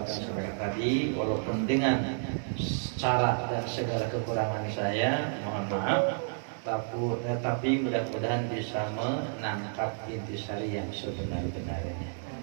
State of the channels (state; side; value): silent; left; digital silence